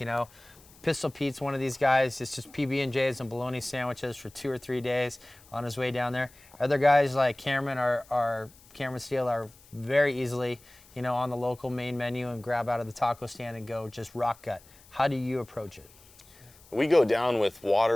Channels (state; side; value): noise; left; hiss, 25 dB below the sound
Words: know. Pistol Pete's one of these guys. It's just PB&Js and bologna sandwiches for 2 or 3 days on his way down there. Other guys like Cameron Cameron Steele are very easily, you know, on the local main menu and grab out of the taco stand and go just rock gut. How do you approach it? We go down with